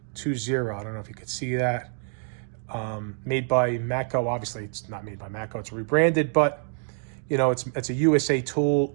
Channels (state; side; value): silent; left; 57 dB below the other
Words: I don't know if you could see that. Made by Matco. Obviously, it's not made by Matco. It's rebranded, but you know, it's a USA tool.